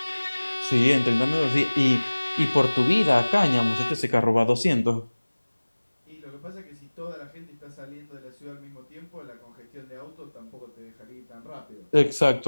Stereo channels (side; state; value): both; inverted; correlation -1.00